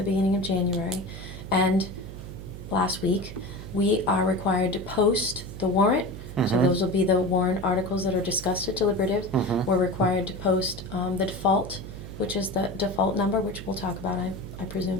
beginning of January, and last week, we are required to post the warrant. So Mhm. those will be the warrant articles that are discussed at deliberative. Mhm. We're required to post the default, which is the default number, which we'll talk about, I presume.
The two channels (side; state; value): right; noise; hum, 11 dB below the sound